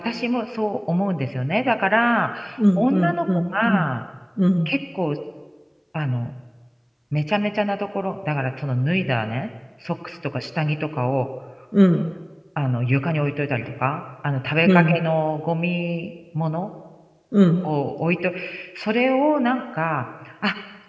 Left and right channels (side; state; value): both; identical; correlation 1.00